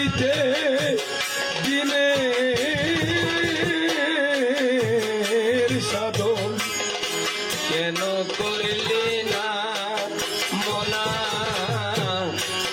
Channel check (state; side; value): identical; both; correlation 1.00